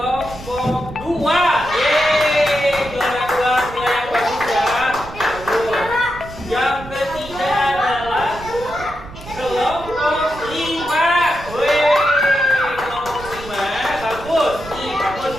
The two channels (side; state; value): right; noise; rumble, 15 dB below the sound